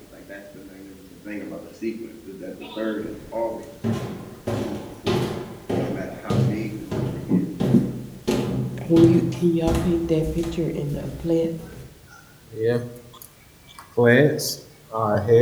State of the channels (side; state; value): both; identical; correlation 1.00